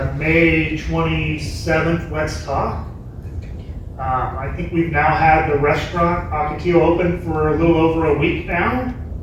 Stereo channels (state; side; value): identical; both; correlation 1.00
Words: May 27th Let's Talk. I think we've now had the restaurant Ocotillo open for a little over a week now.